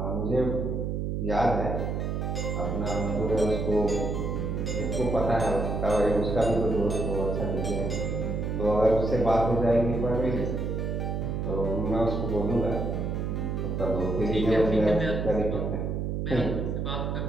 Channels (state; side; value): noise; right; hum, 1 dB below the sound